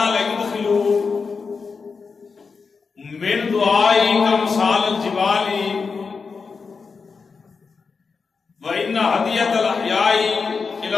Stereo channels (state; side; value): quieter; right; 5.0 dB